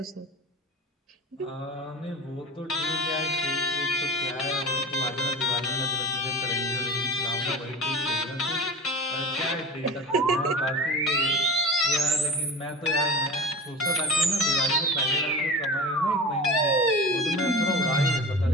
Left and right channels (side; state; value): both; normal; correlation 0.32